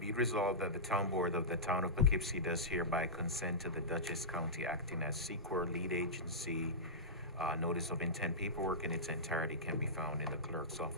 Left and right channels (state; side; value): normal; both; correlation -0.16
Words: it resolved that the town board of the town of Poughkeepsie does hereby consent to the Dutchess County acting as SEQR lead agency. Notice of intent paperwork in its entirety can be found in the clerk's